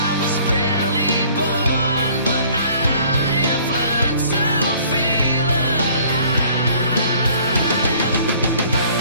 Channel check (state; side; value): inverted; both; correlation -0.55